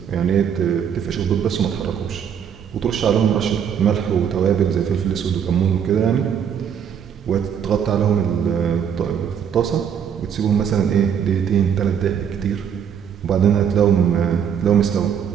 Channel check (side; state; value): left; quieter; 8.0 dB